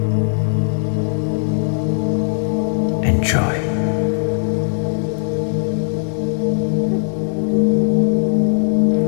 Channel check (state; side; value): silent; right; digital silence